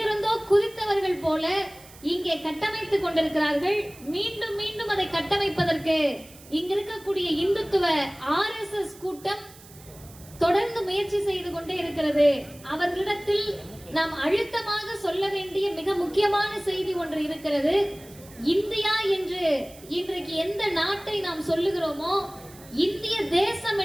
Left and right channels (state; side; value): noise; right; hiss, 21 dB below the sound